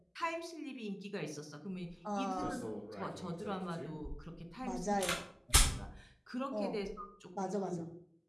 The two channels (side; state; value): both; identical; correlation 1.00